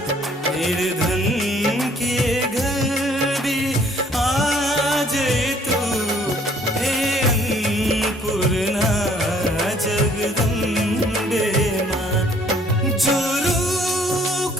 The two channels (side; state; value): both; normal; correlation 0.60